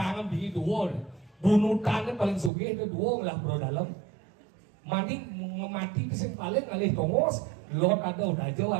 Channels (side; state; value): left; drops out; at 2.5 s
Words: di dua. Bunutannya paling sugih itu dua lah bro dalam. Mandi ngemati kesing paling ngalih tongos. Lot ada udah jauh